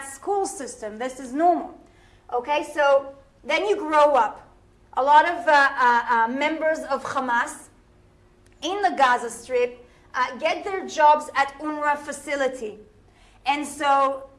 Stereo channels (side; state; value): both; identical; correlation 1.00